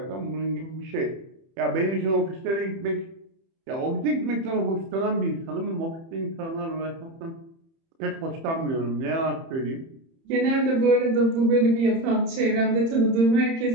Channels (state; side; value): late; left; 30 ms